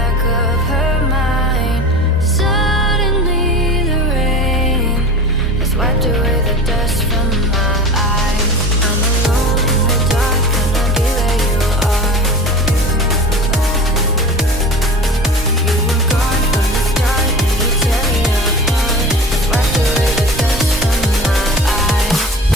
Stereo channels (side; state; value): both; normal; correlation 0.34